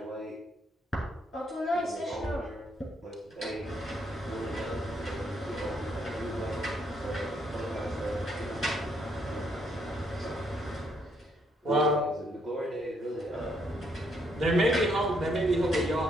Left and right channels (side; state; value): both; normal; correlation 0.73